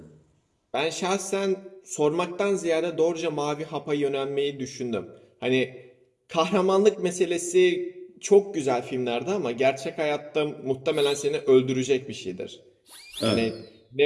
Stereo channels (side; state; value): both; identical; correlation 1.00